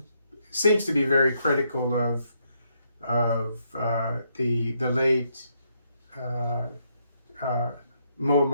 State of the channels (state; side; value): inverted; both; correlation -0.76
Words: seems to be very critical of the late uh, uh,